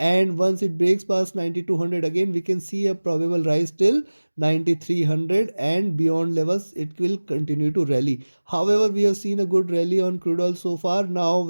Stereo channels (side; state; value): both; inverted; correlation -1.00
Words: once it breaks past 9200 again, we can see a probable rise till 9300, and beyond levels it will continue to rally. However, we have seen a good rally on crude oil so far. Now